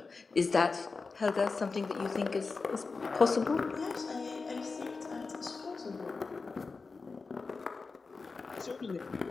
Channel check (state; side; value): quieter; right; 4.3 dB